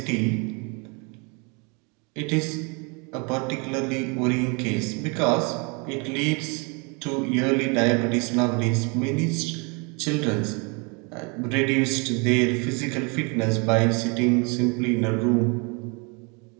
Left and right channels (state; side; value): quieter; left; 32.1 dB